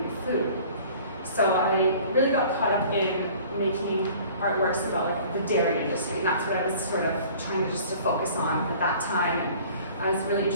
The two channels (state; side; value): inverted; both; correlation -0.48